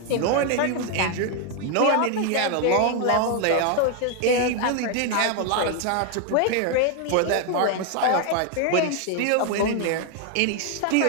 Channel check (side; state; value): both; different; correlation 0.01